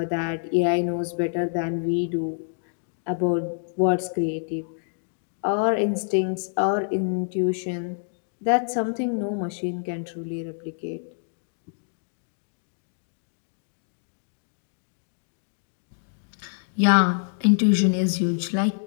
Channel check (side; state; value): right; silent; digital silence